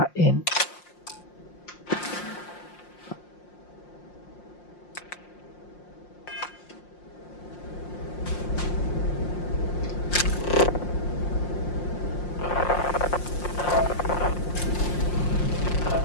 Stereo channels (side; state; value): right; late; 5.6 ms